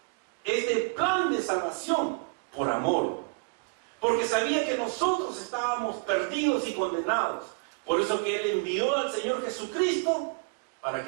plan de salvación por amor, porque sabía que nosotros estábamos perdidos y condenados. Por eso que Él envió al Señor Jesucristo para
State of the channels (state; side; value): quieter; left; 36.6 dB